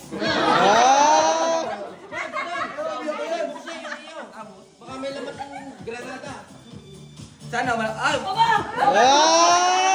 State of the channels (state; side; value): identical; both; correlation 1.00